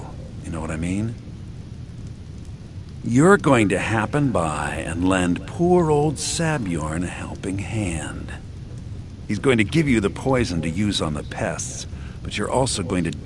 you know what I mean? You're going to happen by and lend poor old Sabjorn a helping hand. He's going to give you the poison to use on the pests, but you're also going to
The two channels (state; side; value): identical; both; correlation 1.00